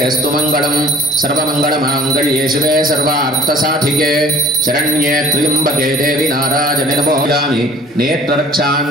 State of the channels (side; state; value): both; normal; correlation 0.50